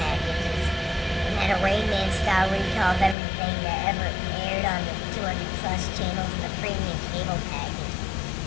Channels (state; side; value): drops out; right; at 3.2 s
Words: packages, and had a Rain Man style recall of everything that ever aired on the 200 plus channels in the premium cable package.